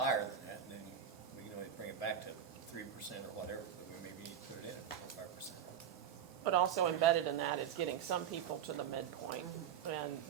than that, and then we can always bring it back to 3% or whatever, but we maybe need to put it in at 5%. But also embedded in that is getting some people to the midpoint, and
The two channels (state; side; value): quieter; left; 8.7 dB